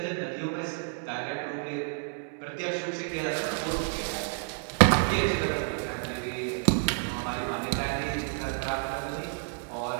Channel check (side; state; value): left; silent; 58 dB below the other